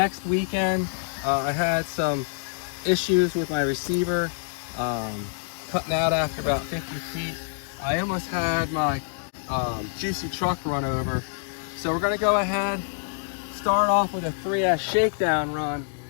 weekend. I had some issues with my receiver, cutting out after about 50 feet. I almost had my Jiusi truck run over. So we're gonna go ahead, start off with a 3S shakedown run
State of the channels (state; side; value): silent; right; digital silence